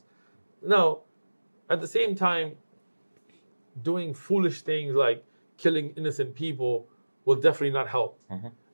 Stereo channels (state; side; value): inverted; both; correlation -1.00